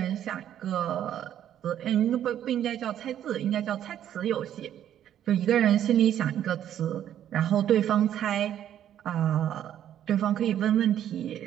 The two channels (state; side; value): quieter; left; 10.7 dB